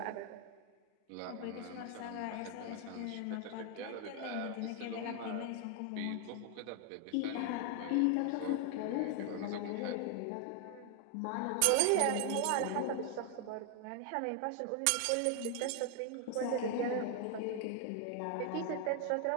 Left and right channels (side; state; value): both; different; correlation 0.00